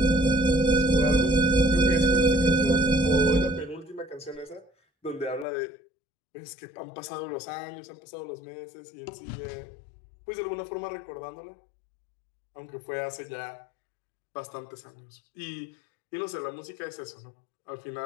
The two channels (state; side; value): drops out; right; at 5.5 s